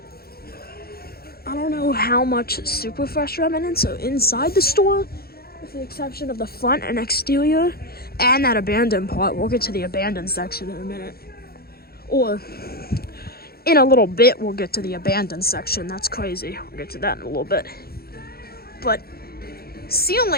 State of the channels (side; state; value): right; late; 0.45 ms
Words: I don't know how much Superfresh remnants are inside the store, with the exception of the front and exterior, and that abandoned part. We'll get to the abandoned section in a minute. Or in a little bit, we'll get to the abandoned section. That's crazy. We'll get to that in a little bit. But